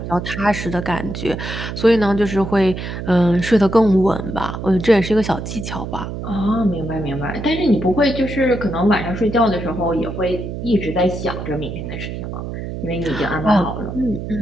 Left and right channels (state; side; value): noise; right; hum, 7 dB below the sound